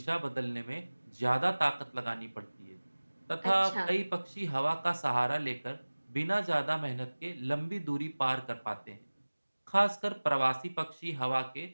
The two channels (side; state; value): both; inverted; correlation -1.00